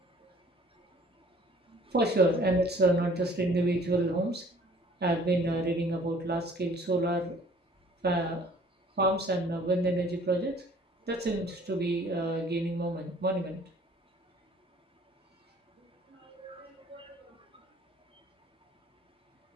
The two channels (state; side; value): normal; both; correlation 0.54